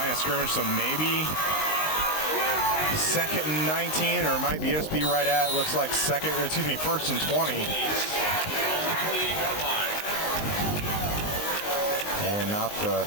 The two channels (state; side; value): late; right; 19 ms